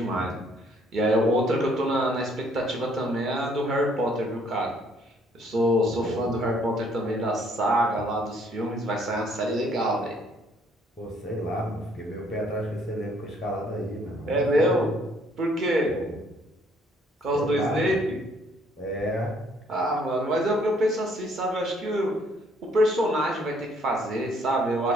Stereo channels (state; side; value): normal; both; correlation 0.64